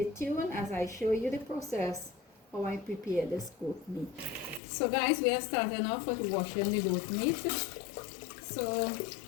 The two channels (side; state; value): right; drops out; at 4.6 s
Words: tuned as I show you the process how I prepare this goat meat. So, guys, we are starting off with washing the goat meat. So